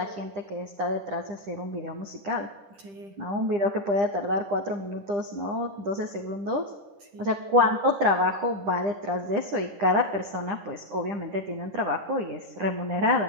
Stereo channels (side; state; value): left; late; 10 ms